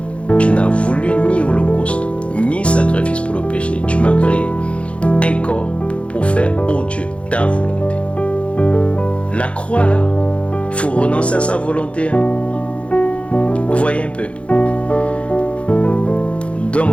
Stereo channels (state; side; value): late; right; 0.061 ms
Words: Tu n'as voulu ni holocauste, ni sacrifice pour le péché. Tu m'as créé un corps pour faire, oh Dieu, ta volonté. La croix, là, il faut renoncer à sa volonté. Vous voyez un peu.